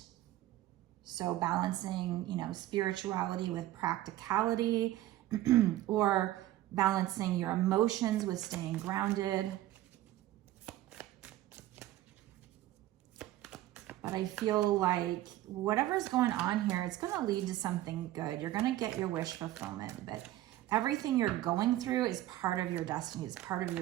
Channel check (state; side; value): quieter; left; 14.9 dB